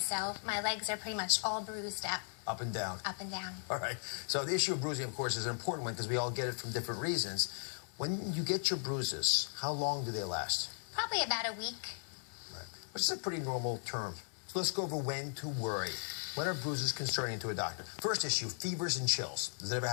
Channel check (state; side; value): silent; right; digital silence